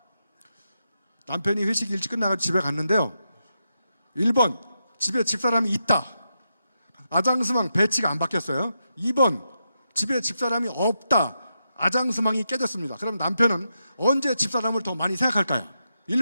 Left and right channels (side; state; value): both; inverted; correlation -0.85